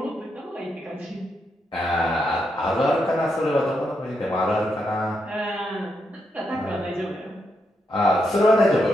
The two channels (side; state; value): both; normal; correlation 0.82